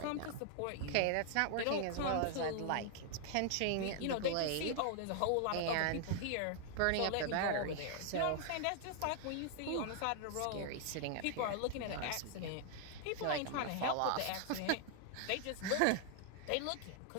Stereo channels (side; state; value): both; different; correlation 0.00